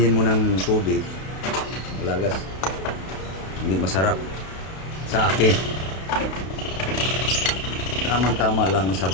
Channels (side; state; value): right; late; 32 ms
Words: mo ng tubig, wala gas. Hindi masarap. Sa akin tamang-tama lang ang